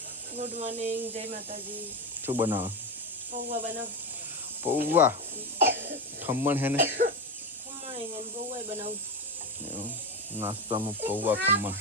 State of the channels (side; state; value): both; normal; correlation 0.18